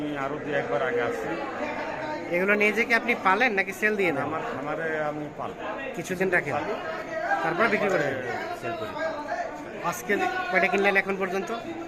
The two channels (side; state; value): both; identical; correlation 1.00